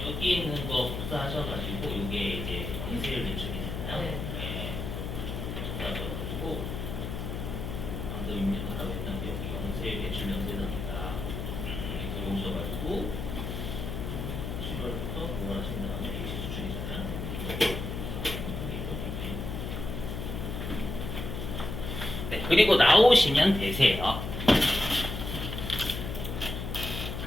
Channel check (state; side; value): noise; left; hum, 5 dB below the sound